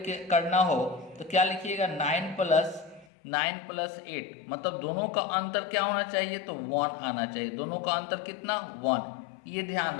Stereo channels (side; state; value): right; drops out; at 3.1 s